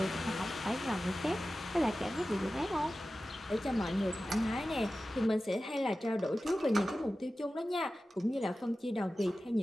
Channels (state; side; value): normal; both; correlation 0.95